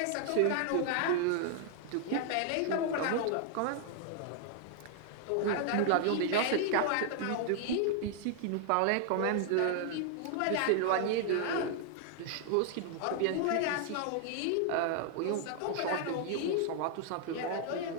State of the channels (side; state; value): both; different; correlation 0.00